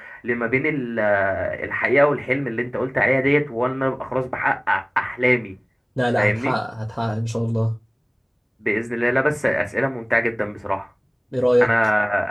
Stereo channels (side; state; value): both; identical; correlation 1.00